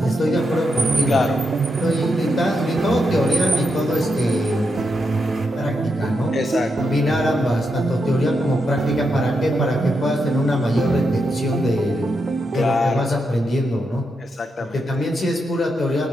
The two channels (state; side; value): normal; both; correlation 0.84